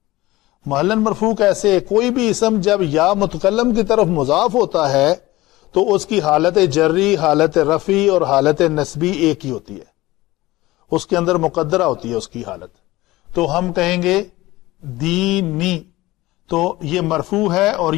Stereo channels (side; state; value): right; quieter; 18.6 dB